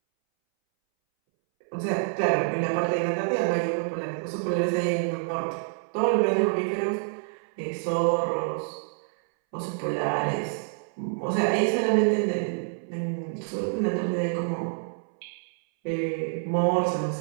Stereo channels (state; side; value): silent; left; 60 dB below the other